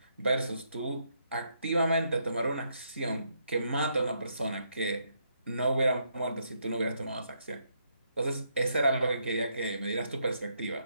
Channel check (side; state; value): both; inverted; correlation -0.76